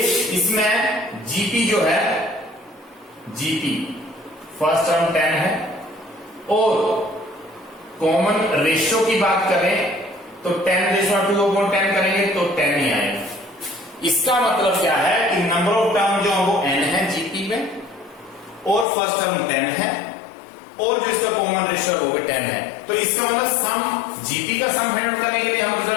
इसमें जीपी जो है जीपी फर्स्ट टर्म 10 है और कॉमन रेशियो की बात करें तो 10⁻2/10 करेंगे तो 10 ही आएगा। इसका मतलब क्या है कि नंबर ऑफ टर्म जो है वो n है जीपी में और फर्स्ट टर्म 10 है और जो इसका कॉमन रेशियो वो भी 10 है। तो इसका मतलब सम जीपी का सम फाइंड आउट करने के लिए हम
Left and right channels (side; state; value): right; drops out; at 18.9 s